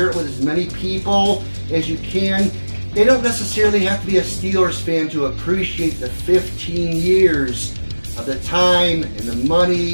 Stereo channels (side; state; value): both; inverted; correlation -1.00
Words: it with as many people as you can. They don't necessarily have to be a Steelers fan to appreciate the 15 years of the time and the